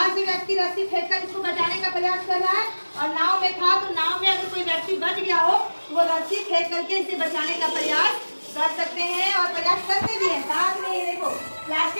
से व्यक्ति रस्सी फेंककर इसको बचाने का प्रयास कर रहा है और नाव में था, तो नाव में अगर कोई व्यक्ति बच गया हो तो वो रस्सी फेंक करके इसे बचाने का प्रयास कर सकते हैं और प्रयास करते भी हैं। साथ में ये देखो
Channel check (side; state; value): both; inverted; correlation -1.00